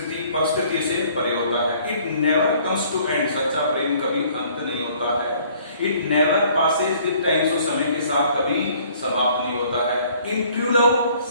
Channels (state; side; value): inverted; both; correlation -0.58